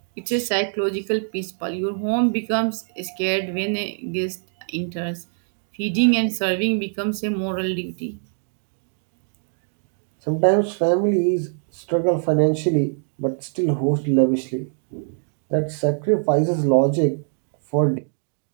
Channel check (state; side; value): silent; left; 61 dB below the other